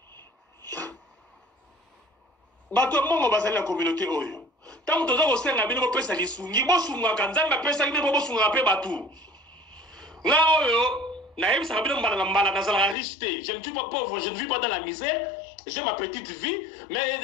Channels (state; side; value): drops out; right; at 13.0 s